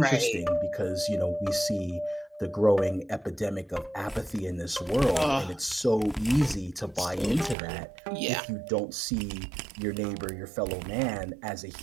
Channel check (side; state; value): left; drops out; at 7.6 s